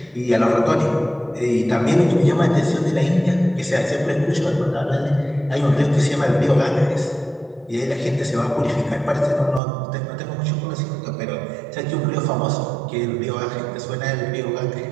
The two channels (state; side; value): drops out; left; at 9.6 s